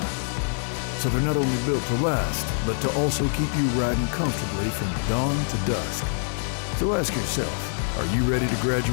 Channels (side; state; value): right; silent; digital silence